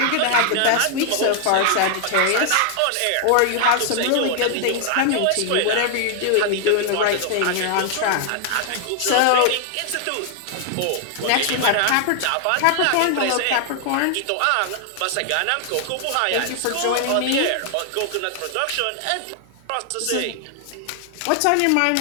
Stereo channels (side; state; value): both; different; correlation 0.00